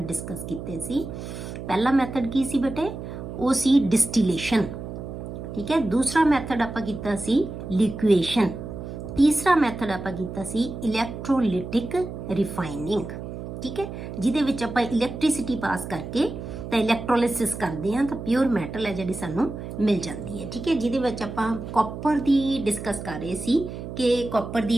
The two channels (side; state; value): right; noise; hum, 9 dB below the sound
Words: ਡਿਸਕਸ ਕੀਤੇ ਸੀ। ਪਹਿਲਾ ਮੈਥਡ ਕੀ ਸੀ ਬੇਟੇ? ਉਹ ਸੀ ਡਿਸਟੀਲੇਸ਼ਨ। ਠੀਕ ਹੈ, ਦੂਸਰਾ ਮੈਥਡ ਆਪਾਂ ਕੀਤਾ ਸੀ ਲਿਕੁਏਸ਼ਨ, ਤੀਸਰਾ ਮੈਥਡ ਆਪਾਂ ਕੀਤਾ ਸੀ ਇਲੈਕਟ੍ਰੋਲਿਟਿਕ ਰਿਫਾਈਨਿੰਗ। ਠੀਕ ਹੈ, ਜਿਹਦੇ ਵਿੱਚ ਆਪਾਂ ਇਲੈਕਟ੍ਰਿਸਿਟੀ ਪਾਸ ਕਰਕੇ ਤਾਂ ਇਲੈਕਟ੍ਰੋਲਿਸਿਸ ਕਰਦੇ ਹਾਂ ਤਾਂ ਪਿਓਰ ਮੈਟਲ ਹੈ ਜਿਹੜੀ ਸਾਨੂੰ ਮਿਲ ਜਾਂਦੀ ਹੈ। ਠੀਕ ਹੈ, ਜਿਹਦੇ ਵਿੱਚ ਆਪਾਂ ਕਾਪਰ ਦੀ ਡਿਸਕਸ ਕਰ ਰਹੇ ਸੀ ਕਿ ਕਾਪਰ